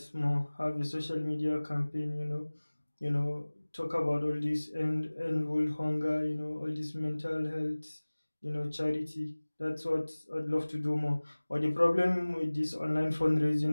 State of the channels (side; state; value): both; inverted; correlation -1.00